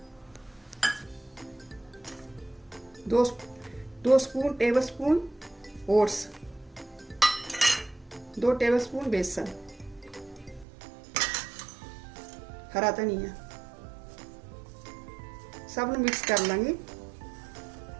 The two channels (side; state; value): left; drops out; at 10.7 s